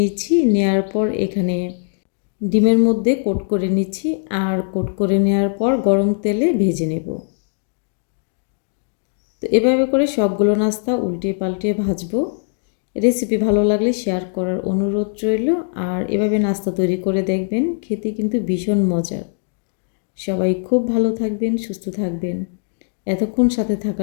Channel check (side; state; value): right; silent; 66 dB below the other